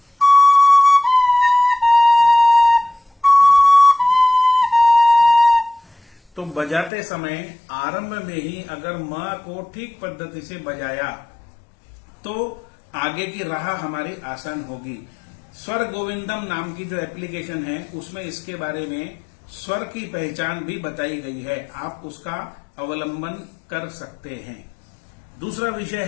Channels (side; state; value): right; drops out; at 6.9 s